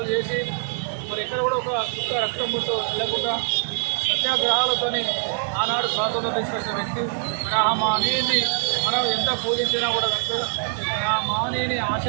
చేసి మరి ఎక్కడ కూడా ఒక చుక్క రక్తం ముట్టు వెళ్ళకుండా సత్యాగ్రహాలతోని ఆనాడు స్వాతంత్రం తీసుకొచ్చిన వ్యక్తి. ఆ మహనీయుని మనం ఎంత పూజించినా కూడా ఆ మహనీయుని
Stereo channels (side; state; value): left; silent; digital silence